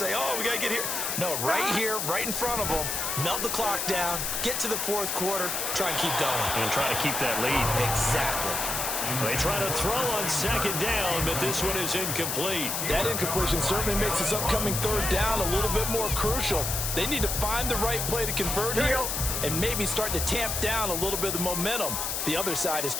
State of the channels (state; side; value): noise; left; hiss, 1 dB below the sound